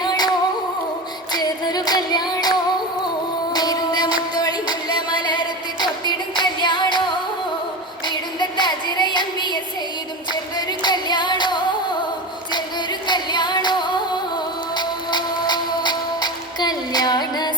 ചേർന്നൊരു കല്യാണോ മുത്തോളി മുല്ല മലർത്ത് തൊത്തിടും കല്യാണോ വീടുന്ന താജിറയമ്പിയെ ചെയ്തും ചേർന്നൊരു കല്യാണോ ചേർന്നൊരു കല്യാണോ കല്യാണ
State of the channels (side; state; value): both; normal; correlation 0.24